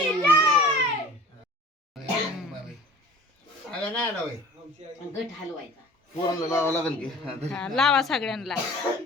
गट हलवायचा. पोरांना लावावं लागेल की. हा, लावा सगळ्यांना.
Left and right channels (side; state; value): both; normal; correlation 0.45